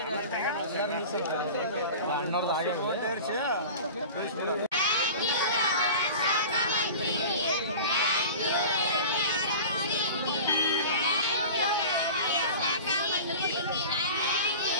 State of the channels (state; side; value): inverted; both; correlation -0.36